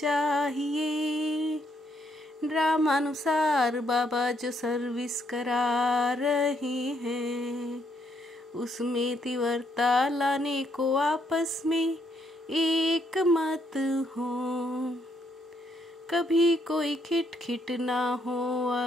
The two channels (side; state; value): both; normal; correlation 0.73